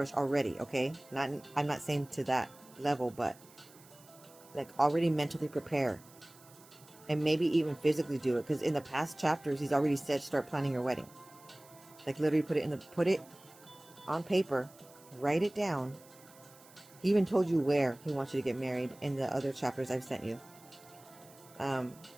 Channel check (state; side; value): noise; right; hiss, 24 dB below the sound